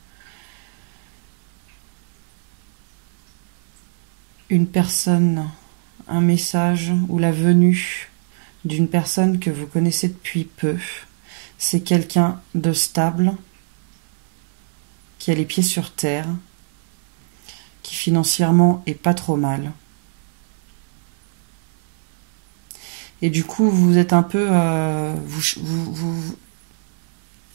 une personne, un message ou la venue d'une personne que vous connaissez depuis peu. C'est quelqu'un de stable, qui a les pieds sur terre, qui financièrement est pas trop mal. Et du coup, vous êtes un peu...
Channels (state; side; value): silent; left; digital silence